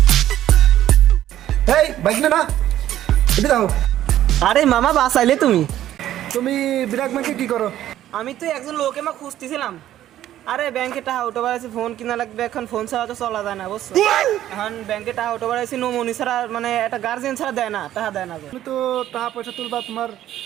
এই bike না এটা দাও। আরে মামা বাসাইলে তুমি তুমি বিরাট ব্যাংকে কি করো? আমি তো একজন লোকে মা খুঁজতেছিলাম। আরে ব্যাংকে টাকা উঠে বেড়াইছি, ফোন কিনা লাগবে, এখন ফোন ছাড়া তো চলা যায় না বুঝছো। এখন ব্যাংকে টাকা উঠে বেড়াইছি, নমনি ছাড়া মানে একটা গার্জেন ছাড়া দেয় না, টাকা দেয় না। তুমি তো টাকা পয়সা তুলবা, তোমার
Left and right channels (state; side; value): quieter; left; 12.5 dB